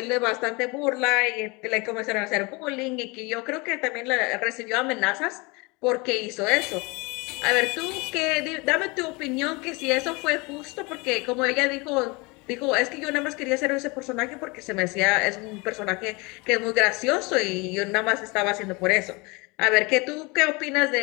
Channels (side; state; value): right; quieter; 26.9 dB